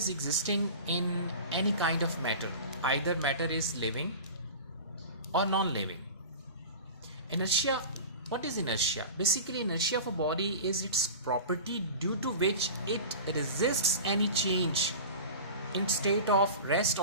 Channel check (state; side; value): inverted; both; correlation -0.34